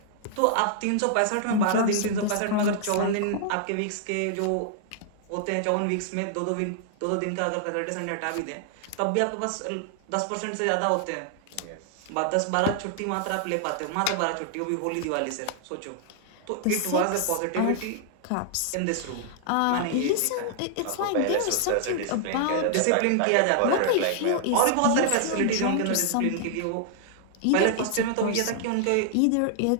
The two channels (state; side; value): different; both; correlation -0.01